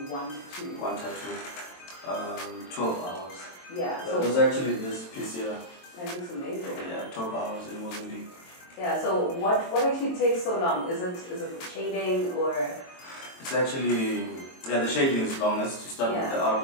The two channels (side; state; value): right; late; 22 ms